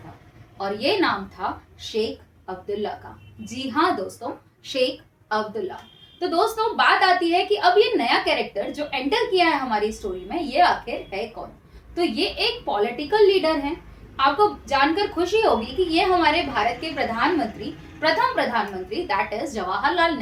और ये नाम था शेख अब्दुल्ला का। जी हाँ दोस्तों, शेख अब्दुल्ला। तो दोस्तों बात आती है कि अब ये नया कैरेक्टर जो एंटर किया है हमारी स्टोरी में, ये आखिर है कौन? तो ये एक पॉलिटिकल लीडर है। आपको जानकर खुशी होगी कि ये हमारे भारत के प्रधानमंत्री, प्रथम प्रधानमंत्री दैट इज जवाहरलाल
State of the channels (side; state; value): both; identical; correlation 1.00